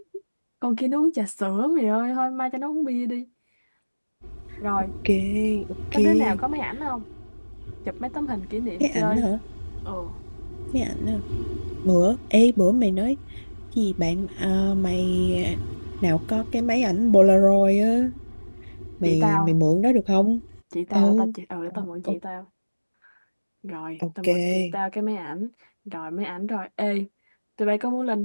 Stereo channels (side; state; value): both; inverted; correlation -1.00